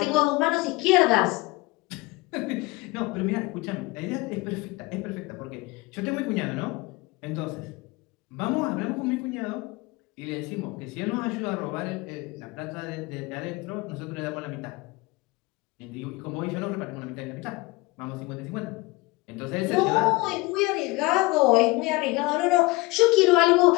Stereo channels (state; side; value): quieter; right; 23.0 dB